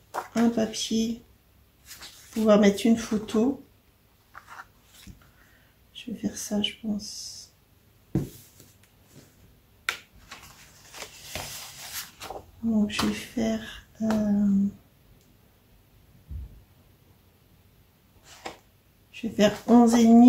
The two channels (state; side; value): identical; both; correlation 1.00